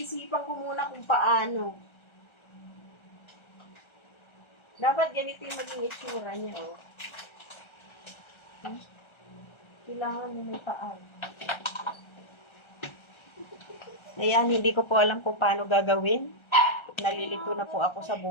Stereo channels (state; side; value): late; right; 1.3 ms